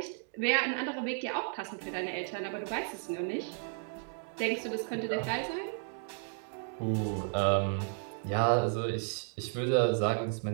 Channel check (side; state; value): left; silent; 56 dB below the other